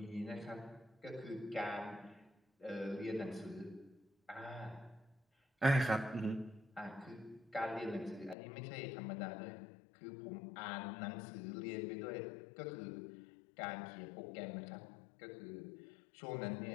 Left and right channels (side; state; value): right; drops out; at 8.3 s